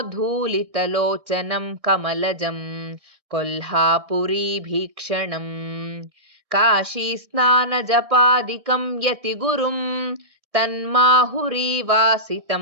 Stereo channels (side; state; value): left; late; 1.6 ms